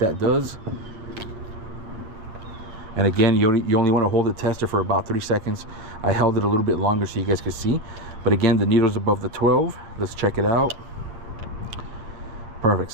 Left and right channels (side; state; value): left; late; 9.0 ms